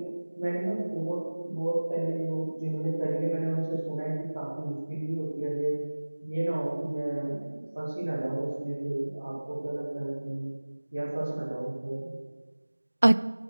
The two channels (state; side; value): inverted; both; correlation -1.00